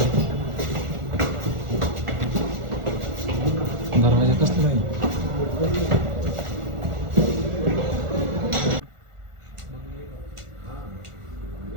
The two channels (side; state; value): left; late; 1.4 ms